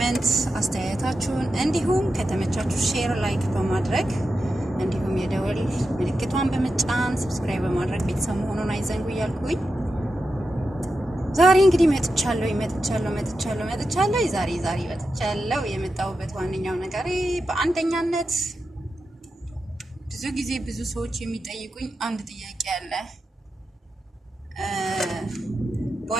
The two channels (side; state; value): both; normal; correlation 0.89